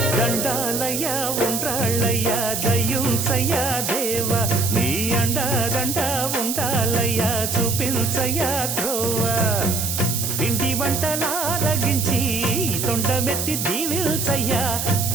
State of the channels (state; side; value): noise; right; hiss, 2 dB below the sound